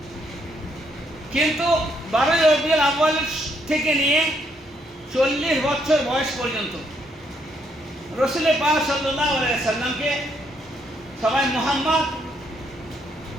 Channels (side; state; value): both; normal; correlation 0.73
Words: কিন্তু 12 রবিউল আউয়াল থেকে নিয়ে 40 বছর বয়স পর্যন্ত রসুল পাক সাল্লাল্লাহু আলাইহি সাল্লামকে সবাই